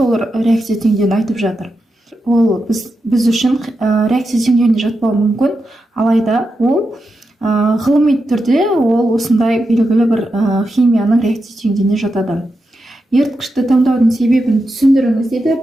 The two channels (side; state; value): both; normal; correlation 0.88